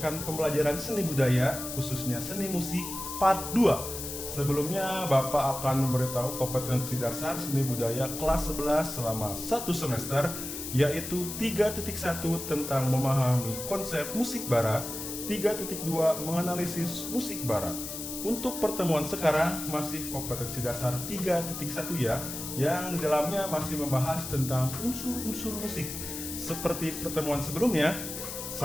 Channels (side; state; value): left; noise; hiss, 7 dB below the sound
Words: pembelajaran seni budaya, khususnya seni musik part 2. Sebelumnya Bapak akan memberitahu kompetensi dasar seni budaya kelas 11 selama 1 semester, yaitu 3.1 tentang memahami konsep musik barat, 3.2 menganalisis musik barat. Untuk pertemuan sekarang masih kompetensi dasar 3.1 ya, yang di dalamnya masih membahas tentang unsur-unsur musik. Seperti pertemuan sebelumnya,